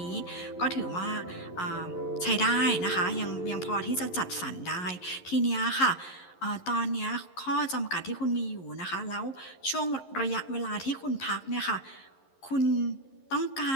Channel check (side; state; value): right; late; 11 ms